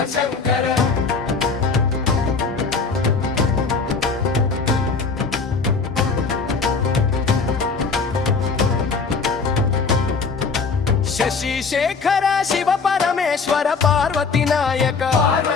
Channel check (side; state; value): right; quieter; 4.8 dB